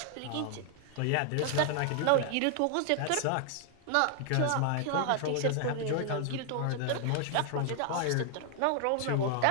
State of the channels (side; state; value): both; different; correlation 0.00